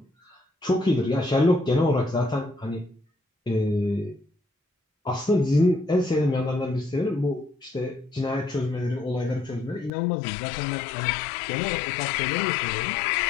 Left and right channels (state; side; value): drops out; right; at 9.9 s